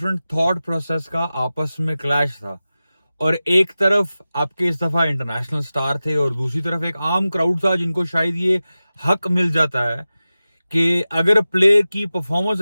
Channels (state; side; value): inverted; both; correlation -0.95